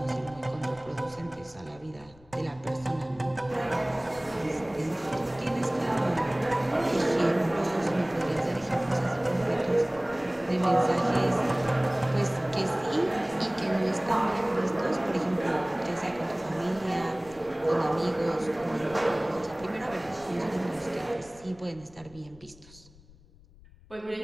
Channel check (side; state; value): left; noise; rumble, 24 dB below the sound